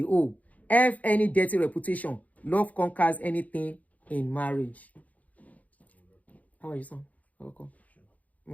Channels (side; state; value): right; late; 0.073 ms